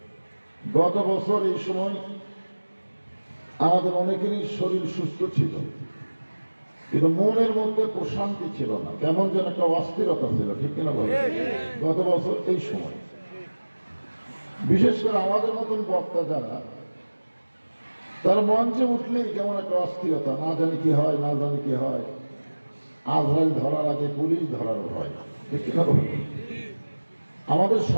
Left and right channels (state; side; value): inverted; both; correlation -1.00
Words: গত বছর এই সময় আমাদের অনেকেরই শরীর সুস্থ ছিল, কিন্তু মনের মধ্যে প্রশান্তি ছিল না, কেমন যেন একটা অস্থিরতা ছিল, ঠিক কিনা বলেন? গত বছর এই সময় বিশেষ করে আমাদের মতন বক্তা যারা, তার মঞ্চে উঠলেই কেমন একটা অস্থিরতা, না জানি কি হয়, না জানি কি হয়, আজরাইল ধরার আগে পুলিশ ধরার ভয়, ঠিক কিনা বলেন? আমাদের